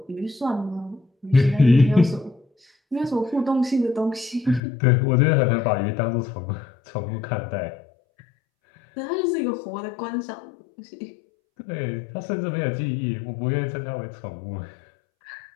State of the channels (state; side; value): drops out; right; at 4.6 s